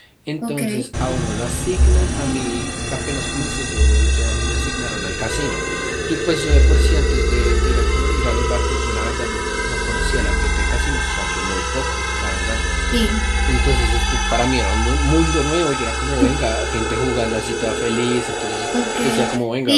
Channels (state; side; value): identical; both; correlation 1.00